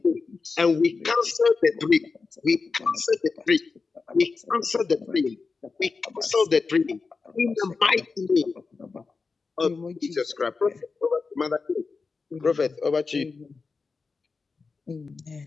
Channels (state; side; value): quieter; right; 4.5 dB